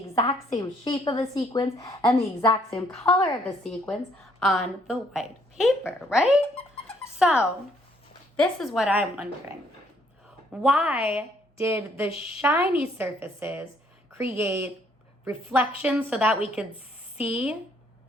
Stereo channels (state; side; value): normal; both; correlation 0.67